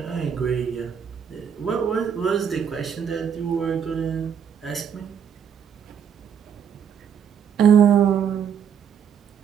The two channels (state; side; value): quieter; left; 7.8 dB